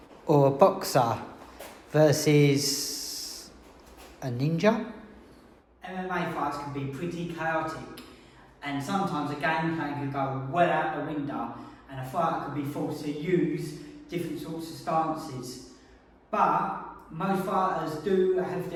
or a boxer versus a ninja. MMA fights can be pretty chaotic, and sometimes a game plan can go well out the window and a fighter can be forced to use different sorts of stances. But most fighters do have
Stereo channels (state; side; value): identical; both; correlation 1.00